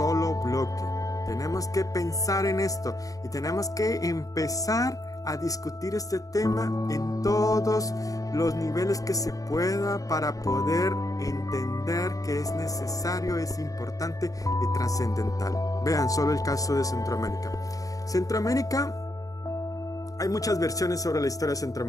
bloque. Tenemos que pensar en esto y tenemos que empezar a discutir este tema en todos los niveles que se pueda para poder entender que es necesario, es importante y trascendental. Vean solo el caso de Centroamérica. Centroamérica, hay muchas versiones sobre la historia de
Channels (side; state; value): right; late; 0.17 ms